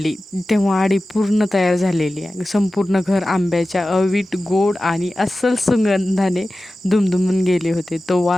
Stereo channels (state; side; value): normal; both; correlation 0.95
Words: तेव्हा आडी पूर्ण तयार झालेली आहे. संपूर्ण घर आंब्याच्या अवीट गोड आणि अस्सल सुगंधाने दुमदुमून गेले होते. तो